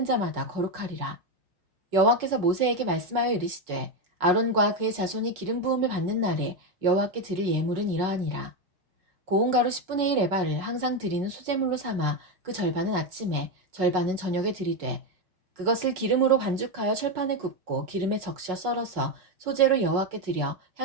자마다 거룩하리라. 여호와께서 모세에게 말씀하여 이르시되 아론과 그의 자손이 기름 부음을 받는 날에 여호와께 드릴 예물은 이러하니라. 고운 가루 10분의 1 에바를 항상 드리는 소재물로 삼아 그 절반은 아침에 절반은 저녁에 드리되 그것을 기름으로 반죽하여 철판에 굽고 기름에 적셔 썰어서 소재로 여호와께 드려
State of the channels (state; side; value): late; left; 5.4 ms